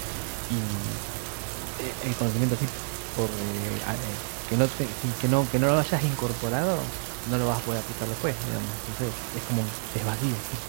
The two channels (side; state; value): left; silent; digital silence